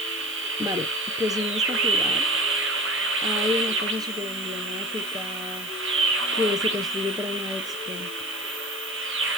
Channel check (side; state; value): left; noise; hiss, 14 dB below the sound